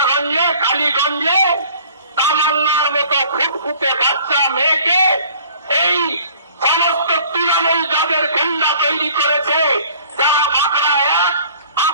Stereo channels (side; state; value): both; inverted; correlation -0.52